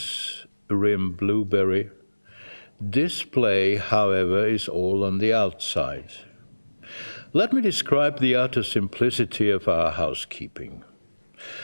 rim blueberry display, however, is all on the outside. Let me describe the utter simplicity of our housekeeping.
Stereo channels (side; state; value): both; inverted; correlation -1.00